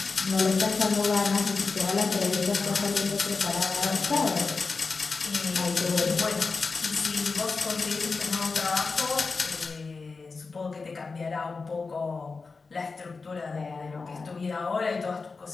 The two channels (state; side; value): quieter; right; 4.3 dB